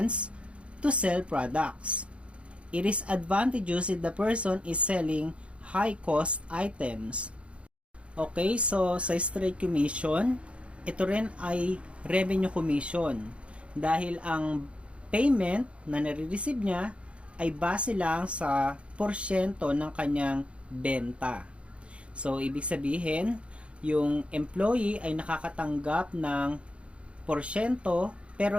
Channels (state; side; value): late; left; 0.060 ms